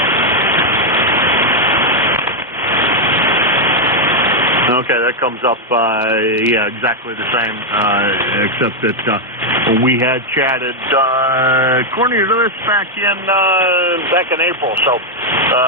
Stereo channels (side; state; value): both; normal; correlation 0.00